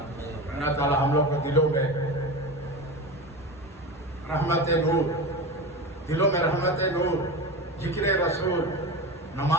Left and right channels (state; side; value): normal; both; correlation 0.25